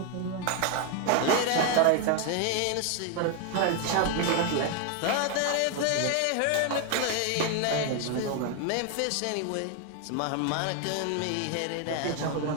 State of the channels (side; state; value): both; different; correlation 0.01